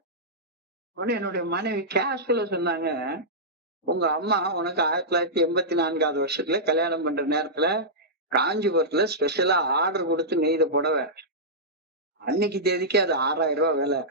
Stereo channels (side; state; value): both; normal; correlation -0.12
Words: உடனே என்னுடைய மனைவி கேஷுவலா சொன்னாங்க, உங்க அம்மா உனக்கு 1984வது வருஷத்துல கல்யாணம் பண்ற நேரத்துல காஞ்சிபுரத்துல ஸ்பெஷலா ஆர்டர் கொடுத்து நெய்த புடவை, அன்னைக்கு தேதிக்கு அது 6000 ரூபாய் விலை,